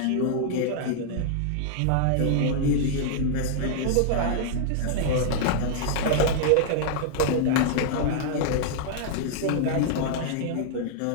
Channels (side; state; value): both; different; correlation -0.01